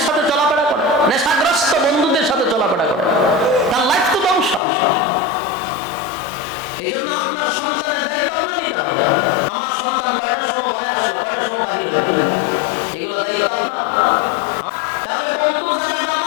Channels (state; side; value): drops out; right; at 4.6 s